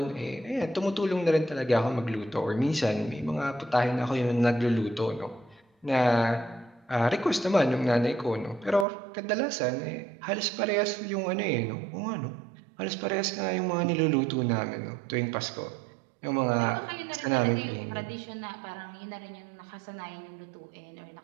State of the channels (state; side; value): drops out; left; at 8.8 s